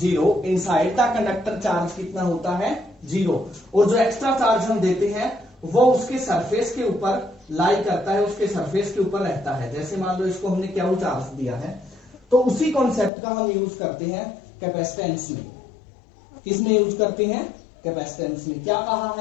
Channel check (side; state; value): right; drops out; at 13.1 s